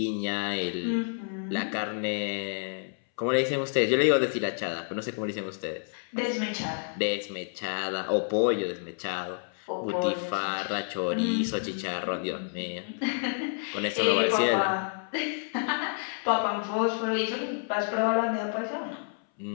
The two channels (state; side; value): silent; right; 58 dB below the other